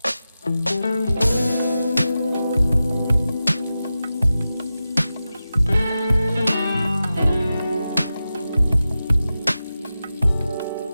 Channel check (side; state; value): both; inverted; correlation -0.93